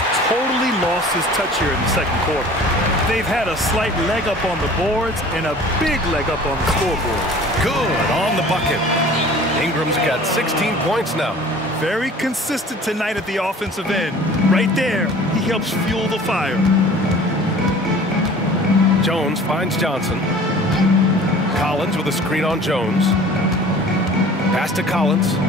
totally lost his touch here in the second quarter. They've had a slight leg up on the boards and a big leg up on the scoreboard. Good on the bucket. Ingram's got 16 points now. Very consistent tonight at the offensive end. Right there, he helps fuel the fire. Jones finds Johnson. Collins with a screen on Jones. Pass to Collins.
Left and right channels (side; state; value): both; normal; correlation 0.46